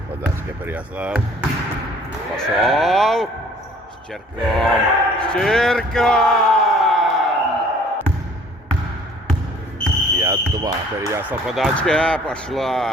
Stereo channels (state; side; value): normal; both; correlation 0.54